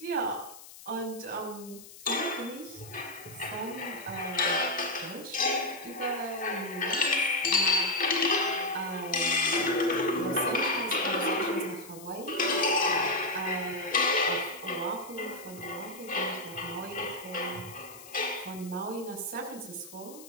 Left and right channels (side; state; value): left; noise; hiss, 17 dB below the sound